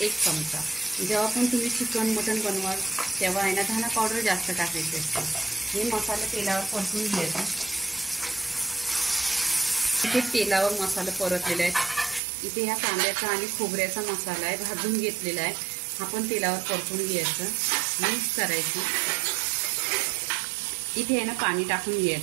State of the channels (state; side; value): drops out; left; at 12.2 s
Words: 1 चमचा। जेव्हा पण तुम्ही चिकन मटन बनवाल तेव्हा आहे ना धना पावडर जास्त टाकायची असते। हे मसाला तेलावर परतून घ्यायचा। इथे तेलावर मसाला परतलेला आहे। इथे ह्या कांद्याचा आणि खोबऱ्याचा मसाला आहे, भाजून घेतलेला आहे। हा पण तेलावर परतून घ्यायचं, मिक्स करायचं। इथे आहे ना पाणी टाकून